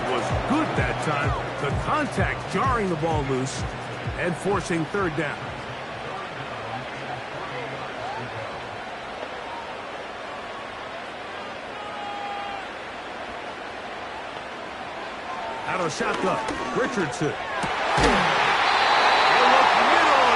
was good that time. The contact jarring the ball loose and forcing third down. Out of shotgun, Richardson. They look middle,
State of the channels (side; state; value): both; identical; correlation 1.00